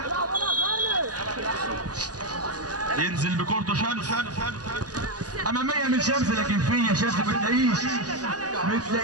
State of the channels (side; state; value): left; late; 0.68 ms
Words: ينزل بكورته شمس اماميه من شمس. لكن فين يا شمس؟ ما